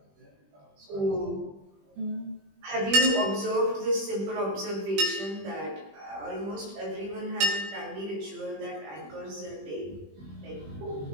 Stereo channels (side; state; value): left; late; 20 ms